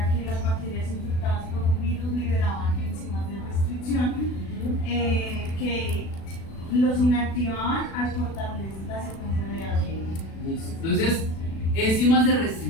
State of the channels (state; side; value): late; right; 36 ms